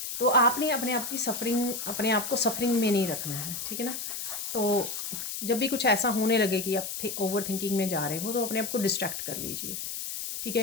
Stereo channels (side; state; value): left; noise; hiss, 5 dB below the sound